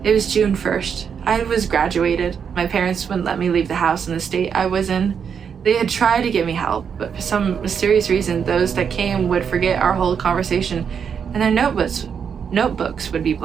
It was June 1st. I was graduated. My parents wouldn't let me leave the house in the state I was in. They had tried to give me help, but for some mysterious reason, those that came would forget our whole conversation, and their notebooks would be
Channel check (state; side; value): quieter; left; 7.1 dB